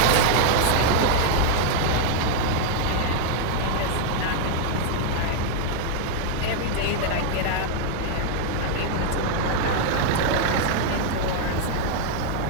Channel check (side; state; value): both; different; correlation 0.00